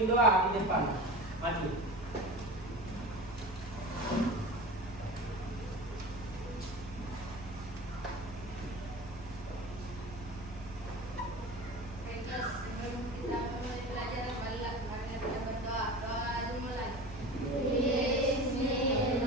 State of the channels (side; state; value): both; normal; correlation 0.32